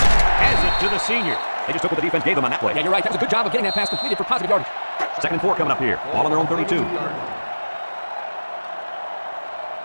it to the senior. They just took what the defense gave them on that play. Yeah, you're right. That was a good job of getting that pass completed for positive yardage. 2nd and 4 coming up here. Ball on their own 32.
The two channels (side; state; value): both; inverted; correlation -1.00